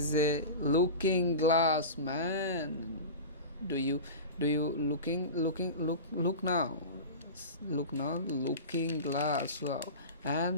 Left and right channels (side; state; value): both; inverted; correlation -0.30